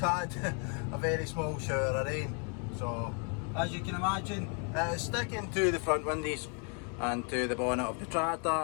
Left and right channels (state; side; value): quieter; right; 39.2 dB